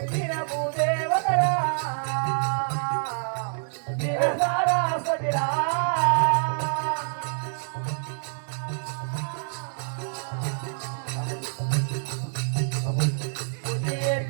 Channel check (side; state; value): left; silent; digital silence